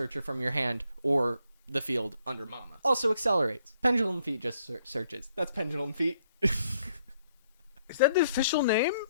from your hand or the field under Mama. Also accelerates. Pendulum Feet just searches. That's Pendulum Feet. Is that the official name?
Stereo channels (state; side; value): inverted; both; correlation -0.70